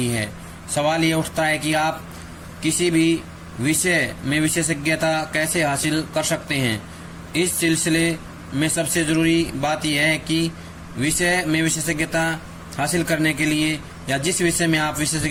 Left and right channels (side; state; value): both; identical; correlation 1.00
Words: है। सवाल ये उठता है कि आप किसी भी विषय में विशेषज्ञता कैसे हासिल कर सकते हैं। इस सिलसिले में सबसे जरूरी बात यह है कि विषय में विशेषज्ञता हासिल करने के लिए या जिस विषय में आप